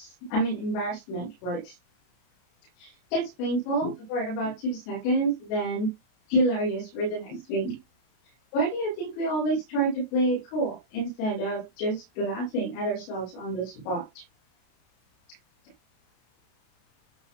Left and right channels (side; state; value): right; late; 33 ms